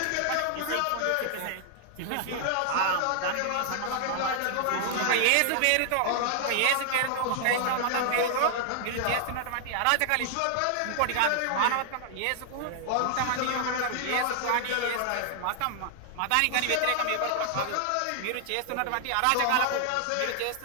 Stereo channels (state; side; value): different; both; correlation -0.01